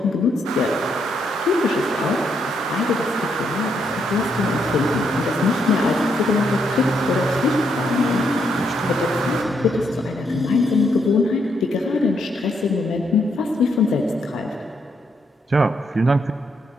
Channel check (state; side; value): normal; both; correlation 0.76